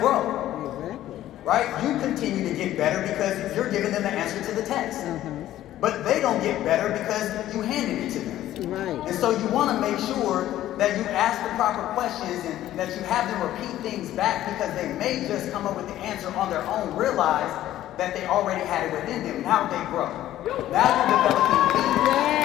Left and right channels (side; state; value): right; quieter; 13.4 dB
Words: Exactly. Right? You continue to get better because you're giving them the answer to the test. But they don't get better because you handed it to them. Right. And so you want to make sure that you ask the proper questions and that you have them repeat things back, because they may just come up with the answer on their own, realize that they already had it within them. Now they grow. Now you're developing leaders.